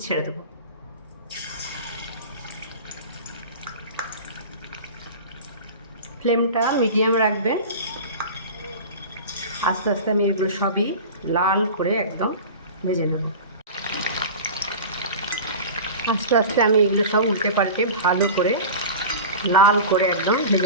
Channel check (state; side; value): inverted; both; correlation -0.33